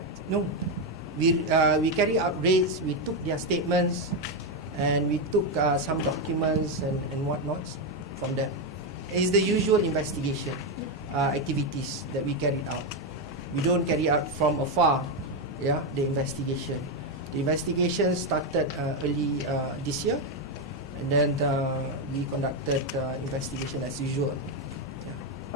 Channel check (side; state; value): both; normal; correlation 0.06